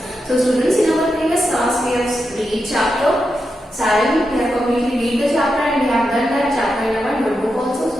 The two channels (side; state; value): both; normal; correlation 0.87